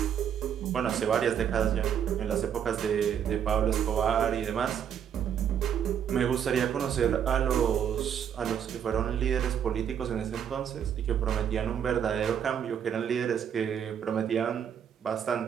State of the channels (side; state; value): left; quieter; 8.7 dB